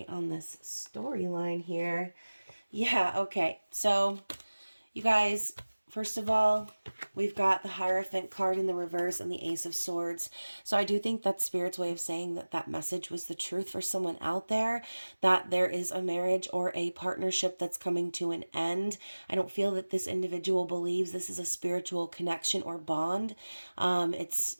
on this storyline here. Yeah, okay. So, you guys, first of all, we've got the Hierophant card in the reverse and the Ace of Swords. So I do think that's Spirit's way of saying that that message was the truth for someone out there, that there is a marriage or a partnership that's coming to an end. I don't feel that this individual believes this is a spiritual connection or bond. It's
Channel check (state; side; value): inverted; both; correlation -1.00